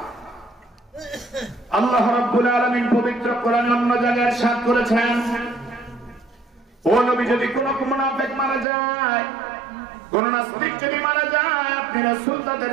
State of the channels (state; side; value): drops out; left; at 8.7 s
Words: আল্লাহ রাব্বুল আলামিন পবিত্র কোরআনে অন্য জায়গায় ইরশাদ করেছেন, ও নবী, যদি কোন মুনাফিক মারা যায়, কোন নাস্তিক যদি মারা যায়, আপনি রাসূল তাদের